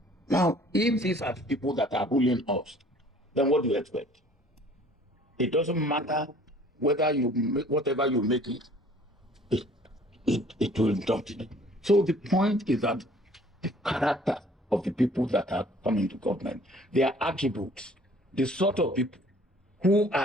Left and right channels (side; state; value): both; normal; correlation 0.54